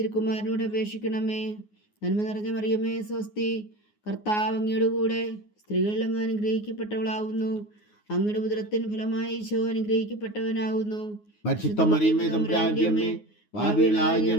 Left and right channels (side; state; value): right; late; 9.5 ms